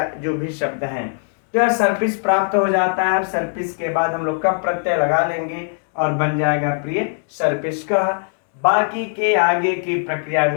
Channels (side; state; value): right; silent; 57 dB below the other